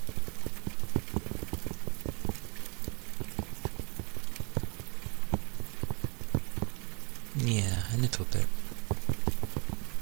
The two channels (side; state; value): left; quieter; 32.2 dB